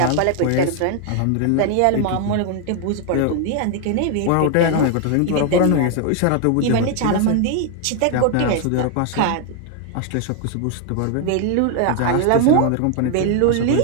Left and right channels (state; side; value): different; both; correlation 0.00